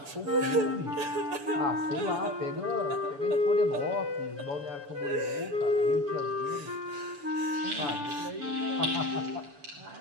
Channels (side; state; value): left; late; 6.9 ms